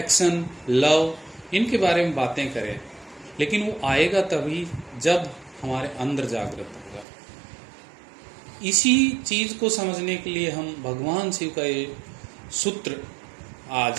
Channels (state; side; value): drops out; left; at 7.1 s